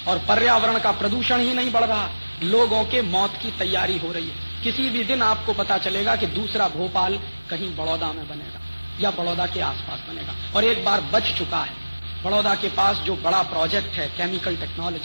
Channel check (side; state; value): both; inverted; correlation -1.00